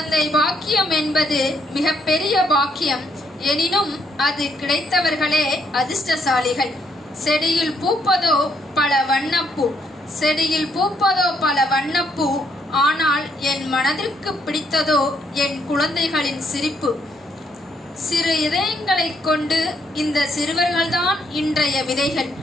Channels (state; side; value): normal; both; correlation 0.72